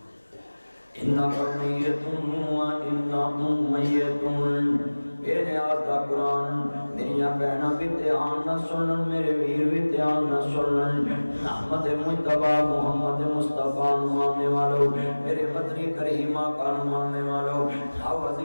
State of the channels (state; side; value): inverted; both; correlation -1.00